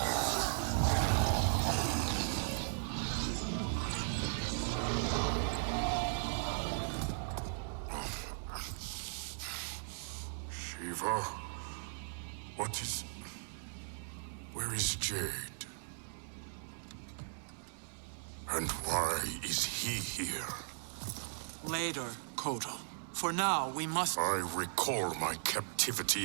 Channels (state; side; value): silent; left; digital silence